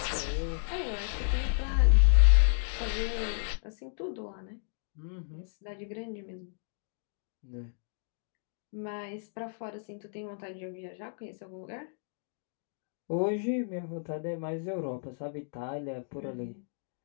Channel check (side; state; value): right; silent; digital silence